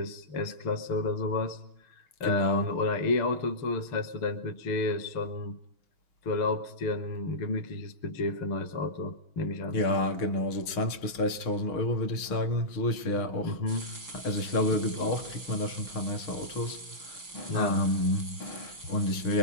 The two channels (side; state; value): right; late; 6.5 ms